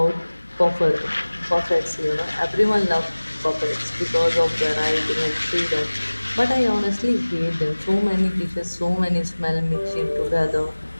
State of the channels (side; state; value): both; inverted; correlation -1.00